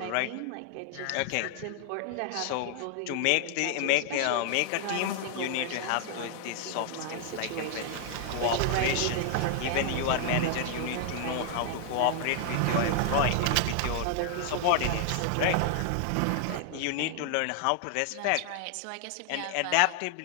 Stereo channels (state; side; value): different; both; correlation 0.00